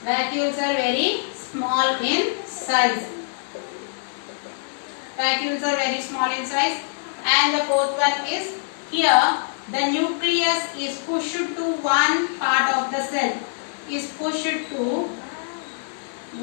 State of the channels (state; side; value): silent; right; digital silence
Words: Vacuoles are very small in size. Vacuoles are very small in size. And the fourth one is here the nucleus is pushed to one part of the cell. Is pushed to